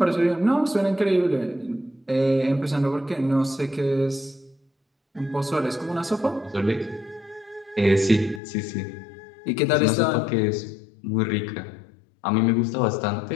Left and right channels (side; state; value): right; drops out; at 8.4 s